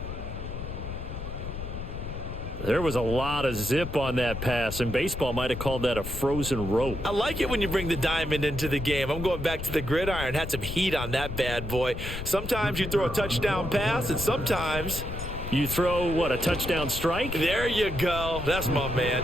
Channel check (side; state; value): left; noise; rumble, 7 dB below the sound